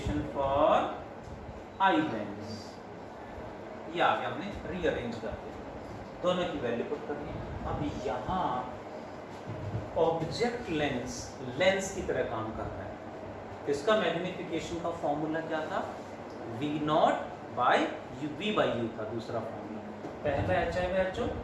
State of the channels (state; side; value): identical; both; correlation 1.00